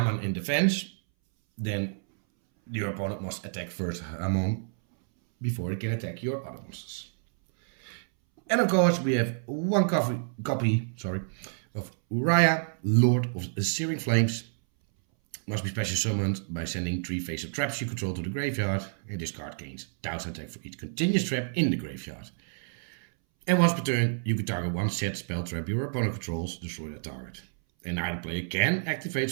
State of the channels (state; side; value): silent; left; 59 dB below the other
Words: in defense, then your opponent must attack first Hammon before it can attack your other monsters. And of course, we have 1 copy of Uriah, Lord of the Searing Flames. Must be special summoned by sending 3 face-up traps you control to the graveyard, and this card gains 1000 attack for each continuous trap in the graveyard. And once per turn, you can target 1 set spell trap your opponent controls, destroy that target. And neither player can activate